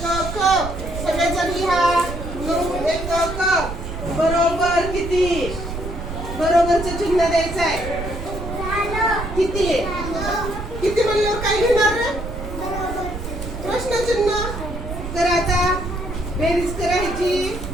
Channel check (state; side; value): noise; right; rumble, 7 dB below the sound